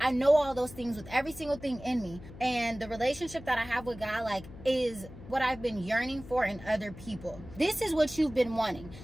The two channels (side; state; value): left; noise; hum, 16 dB below the sound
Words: know all those things with every single thing in me. And the relationship that I have with God, like, is what I've been yearning for in other people. This is what you've been wanting.